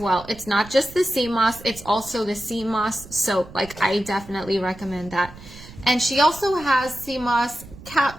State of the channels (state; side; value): noise; right; rumble, 17 dB below the sound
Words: It's not just the sea moss, it's also the sea moss soap. Like, I definitely recommend that. And she also has sea moss